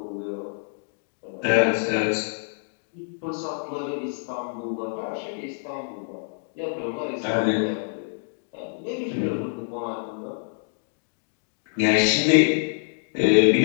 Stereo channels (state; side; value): silent; right; digital silence